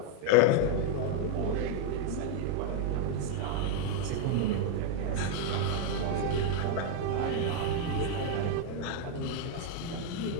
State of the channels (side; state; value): both; different; correlation 0.01